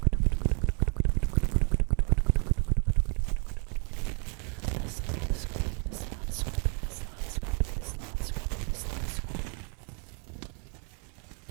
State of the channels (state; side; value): quieter; left; 39.6 dB